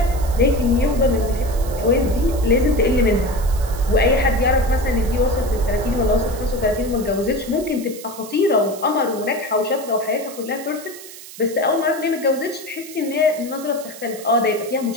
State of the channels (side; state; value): right; noise; hiss, 16 dB below the sound